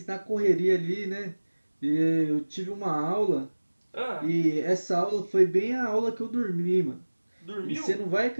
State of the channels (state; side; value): inverted; both; correlation -1.00